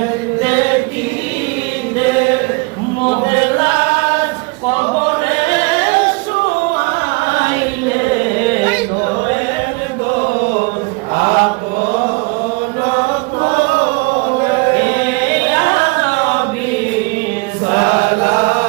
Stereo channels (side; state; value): left; quieter; 27.7 dB